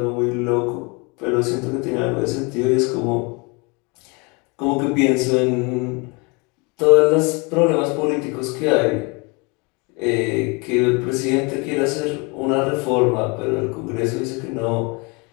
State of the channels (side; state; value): right; quieter; 29.7 dB